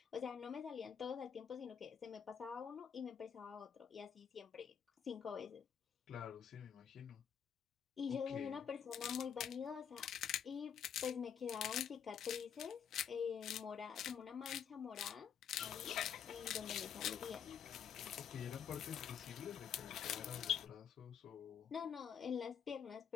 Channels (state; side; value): quieter; right; 7.9 dB